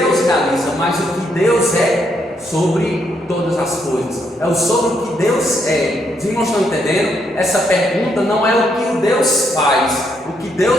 realiza, mas o que Deus é sobre todas as coisas. É o sobre o que Deus é. Vocês não estão entendendo? Essa pergunta não é o que o Deus faz, o que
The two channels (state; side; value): normal; both; correlation 0.75